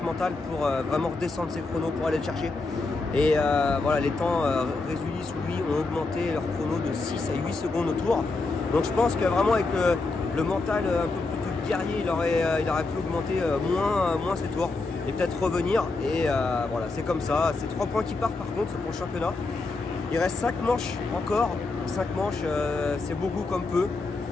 mentales pour vraiment redescendre ses chronos pour aller le chercher. Et voilà, les temps Résulis, lui, ont augmenté leur chrono de 6 à 8 secondes au tour. Donc je pense que vraiment avec le mental un peu plus guerrier, il aurait pu augmenter moins ses tours et peut-être revenir. Et voilà, c'est comme ça. C'est 3 points qui partent par contre pour le championnat. Il reste 5 manches encore. 5 manches, c'est beaucoup comme peu.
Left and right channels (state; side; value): quieter; right; 3.6 dB